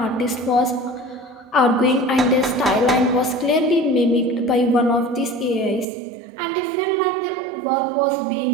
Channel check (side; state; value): left; drops out; at 5.9 s